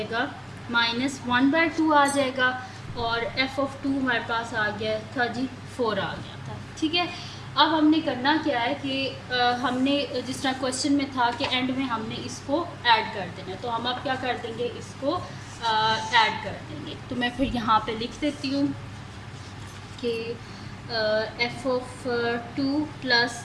-1/2 आ जाएगा, और f ऑफ 2 हमारे पास आ गया था जी 4 आ गया था, ठीक है। अब हमने करना क्या है कि हमने जिस तरह क्वेश्चन में था कि एंड में हमने इसको ऐड कर देना है, तो हम अब क्या कर देंगे, इसको ऐड कर देंगे। तो मैं फिर यहाँ पे लिख देती हूँ कि f of 2 plus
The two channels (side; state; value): both; identical; correlation 1.00